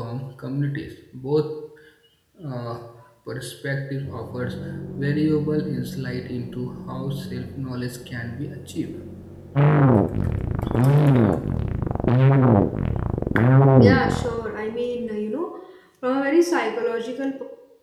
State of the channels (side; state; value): both; identical; correlation 1.00